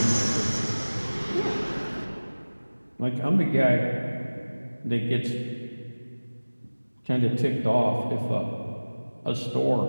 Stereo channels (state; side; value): inverted; both; correlation -1.00